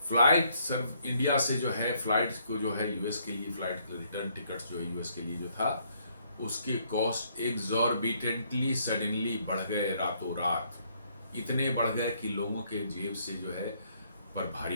फ्लाइट सब इंडिया से जो है फ्लाइट को जो है यूएस के लिए फ्लाइट रिटर्न टिकट्स जो है यूएस के लिए जो था, उसके कॉस्ट एक्सॉर्बिटेंटली सडनली बढ़ गए रातों रात। इतने बढ़ गए कि लोगों के जेब से जो है पर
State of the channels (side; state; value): both; inverted; correlation -0.69